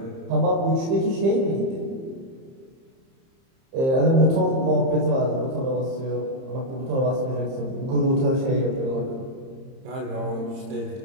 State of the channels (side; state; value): left; late; 30 ms